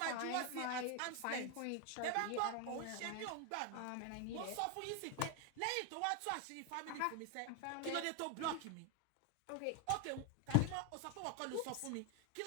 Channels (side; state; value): both; different; correlation 0.00